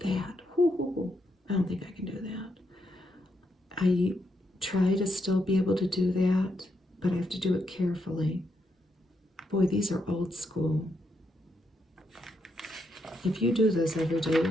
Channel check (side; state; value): both; normal; correlation 0.80